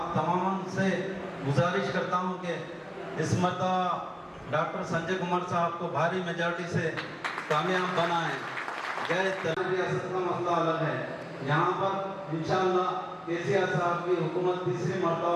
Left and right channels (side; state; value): both; identical; correlation 1.00